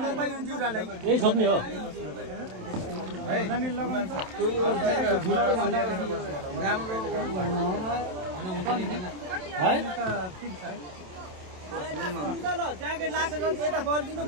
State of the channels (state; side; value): late; left; 27 ms